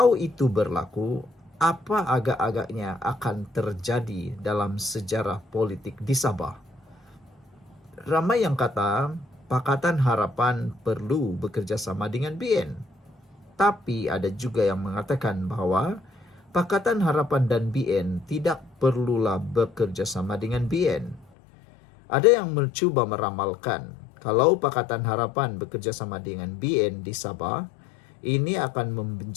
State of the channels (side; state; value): right; drops out; at 21.2 s